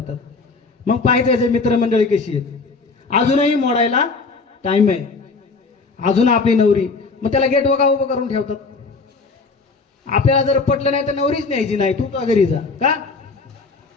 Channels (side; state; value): right; quieter; 4.2 dB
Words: मग पाहायचं याचे मित्रमंडळी कशी आहेत. अजूनही मोडायला टाइम आहे, अजून आपली नवरी. मग त्याला गेट वगा उभं करून ठेवतात. आपल्याला जर पटलं नाही तर नवरीच न्यायची नाही, तू का घरी जा. का?